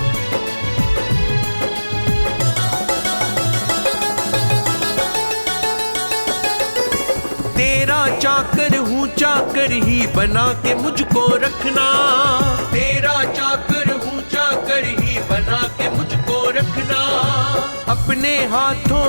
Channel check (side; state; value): both; inverted; correlation -1.00